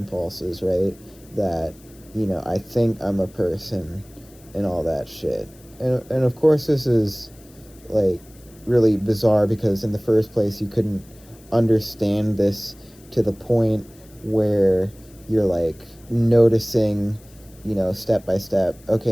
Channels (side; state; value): left; noise; hiss, 26 dB below the sound